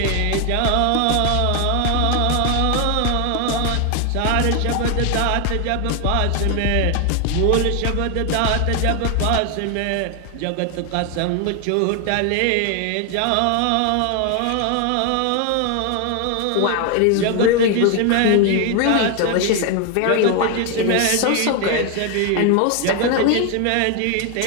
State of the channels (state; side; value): different; both; correlation 0.01